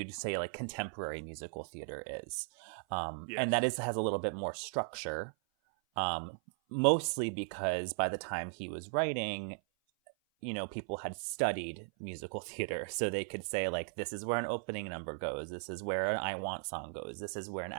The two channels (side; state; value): left; silent; 53 dB below the other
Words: say like contemporary musical theater is, and that has a little bit more structure, mostly because by the time he was writing, you know, people had studied musical theater, so they could say like, this is where an opening number goes, this is where an I Want song goes, this is where an